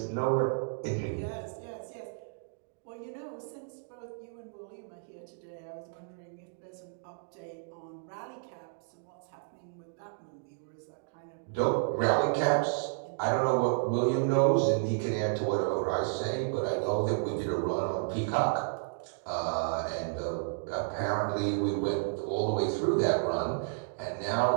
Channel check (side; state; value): left; silent; digital silence